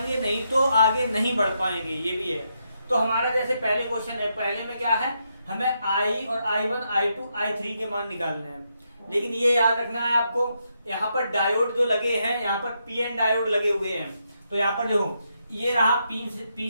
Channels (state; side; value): inverted; both; correlation -0.80